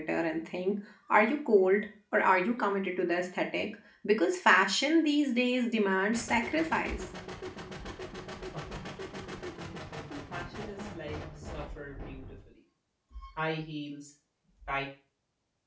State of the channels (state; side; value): identical; both; correlation 1.00